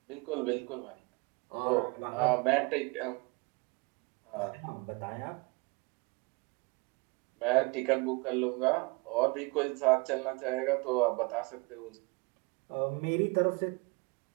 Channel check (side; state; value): left; quieter; 28.1 dB